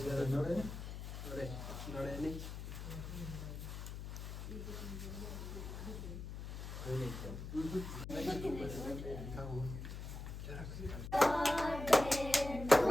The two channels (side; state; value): left; noise; hum, 7 dB below the sound